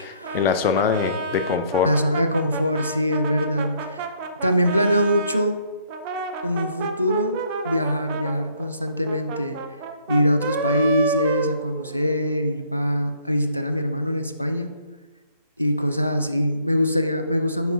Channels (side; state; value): both; inverted; correlation -0.64